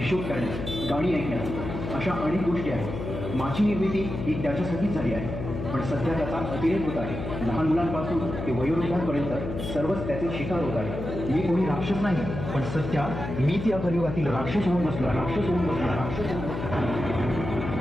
करण्यास, गाणी ऐकण्यास, अशा अनेक गोष्टी आहेत. माझी निर्मिती ही त्याच्यासाठीच झाली आहे, पण सध्या त्याचा अतिरेक होत आहे. लहान मुलांपासून ते वयोवृद्धांपर्यंत सर्वच त्याचे शिकार होत आहे. मी कोणी राक्षस नाही, पण सध्या मीच या कलियुगातील राक्षस होऊन बसलो.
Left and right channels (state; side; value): noise; left; hum, 6 dB below the sound